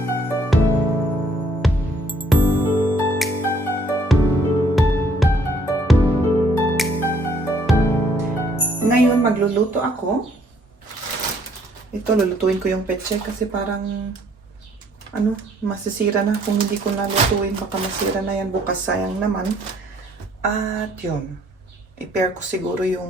Ngayon, magluluto ako. Ito, lulutuin ko yung pechay kasi parang masisira na. Kung hindi ko nalutuin, baka masira na yan bukas. Sayang naman. At yun. I-pair ko siguro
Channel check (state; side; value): normal; both; correlation 0.63